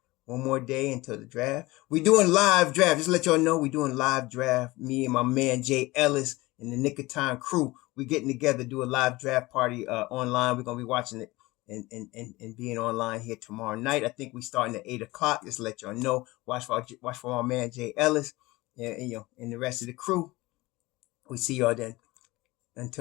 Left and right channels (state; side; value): quieter; right; 20.7 dB